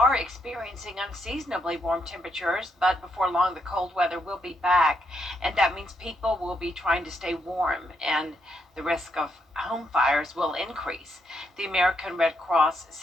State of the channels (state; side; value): normal; both; correlation 0.77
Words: experiencing unseasonably warm temperatures, but before long, the cold weather will be back, and that means people will be trying to stay warm, and the risk of home fires will increase. The American Red Cross